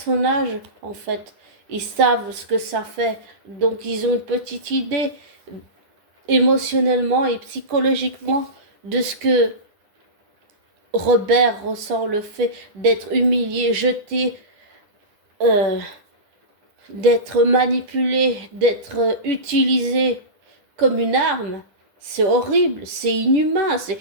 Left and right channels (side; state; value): left; late; 10 ms